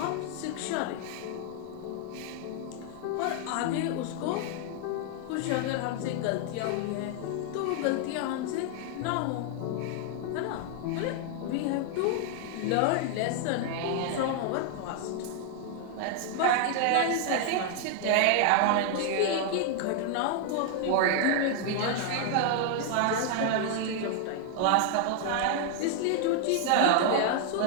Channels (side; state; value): both; different; correlation 0.00